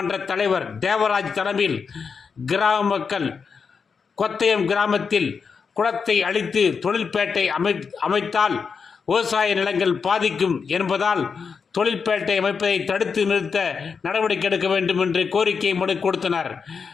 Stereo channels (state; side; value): quieter; right; 5.7 dB